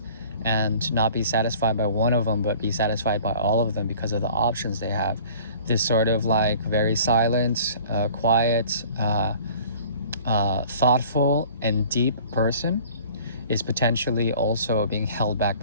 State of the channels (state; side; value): inverted; both; correlation -0.48